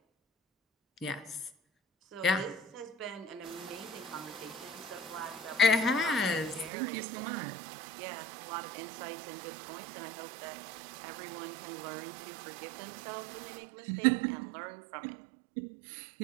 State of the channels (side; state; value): left; drops out; at 6.7 s